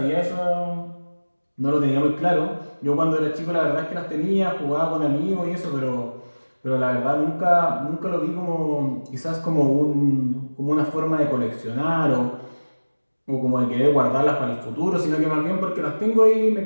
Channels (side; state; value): both; inverted; correlation -1.00